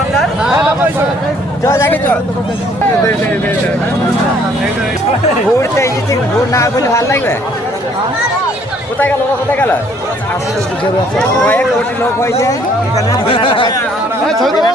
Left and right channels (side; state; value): both; normal; correlation 0.62